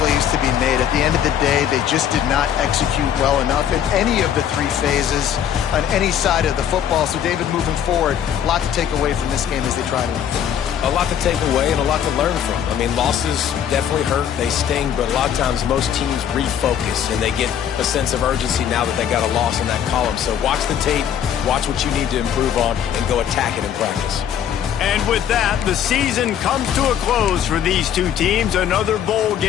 plays to be made. At the end of the day, they just did not execute well enough in any of the 3 phases on any side of the football. So, David, moving forward, a lot to take away from this game as they try to improve. A lot to take away and a lot to learn from. I mean, losses definitely hurt. They sting, but a lot of times most teams refocus and they get a sense of urgency now that they got a loss in that column. So watch the tape, watch what you need to improve on, and go attack it in practice. And with that, the season comes to a close for these two teams. Another bowl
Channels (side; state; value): right; quieter; 9.3 dB